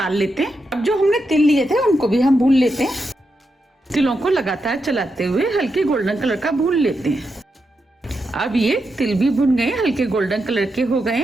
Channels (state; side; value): normal; both; correlation 0.85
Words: लेते हैं। अब जो हमने तिल लिए थे उनको भी हम भून लेते हैं। तिलों को लगातार चलाते हुए हल्के गोल्डन कलर का भून लेते हैं। अब ये तिल भी भुन गए, हल्के गोल्डन कलर के हो गए